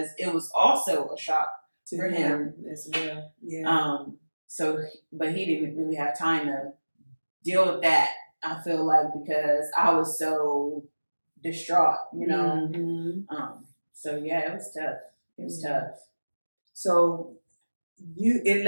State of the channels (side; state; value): both; inverted; correlation -1.00